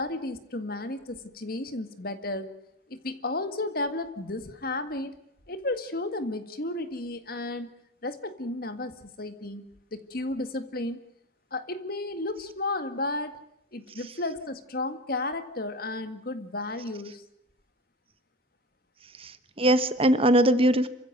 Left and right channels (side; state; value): both; normal; correlation 0.32